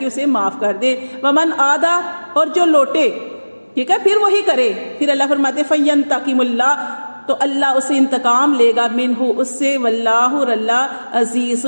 اسے معاف کر دے. ومن عادا اور جو لوٹے، ٹھیک ہے، پھر وہی کرے. پھر اللہ فرماتے فینتقم اللہ تو اللہ اسے انتقام لے گا منہ اس سے، واللہ اور اللہ عزیز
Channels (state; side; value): inverted; both; correlation -1.00